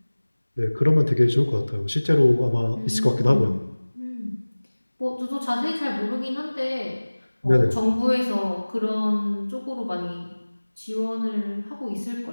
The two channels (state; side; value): inverted; both; correlation -1.00